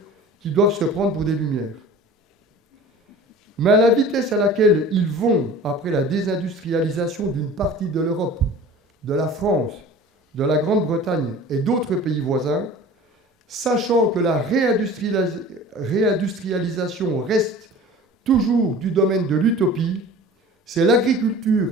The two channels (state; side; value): normal; both; correlation 0.42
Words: qui doivent se prendre pour des lumières. Mais à la vitesse à laquelle ils vont après la désindustrialisation d'une partie de l'Europe, de la France, de la Grande-Bretagne et d'autres pays voisins, sachant que la réindustrialisation reste toujours du domaine de l'utopie, c'est l'agriculture